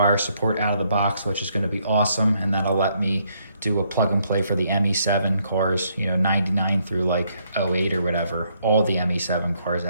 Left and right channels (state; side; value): inverted; both; correlation -0.72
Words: support out of the box, which is going to be awesome, and that'll let me do a plug and play for the ME7 cars, you know, 99 through like 08 or whatever, all the ME7 cars,